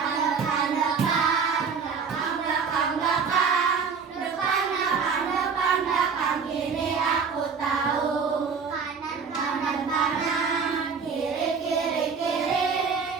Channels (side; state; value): left; quieter; 5.7 dB